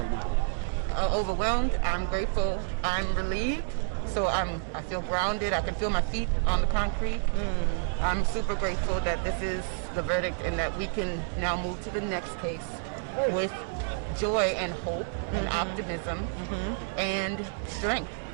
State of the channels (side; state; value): left; silent; digital silence